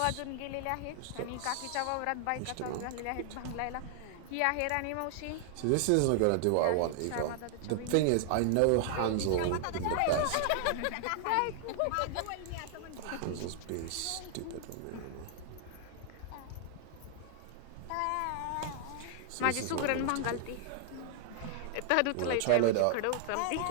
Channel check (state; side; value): different; both; correlation 0.00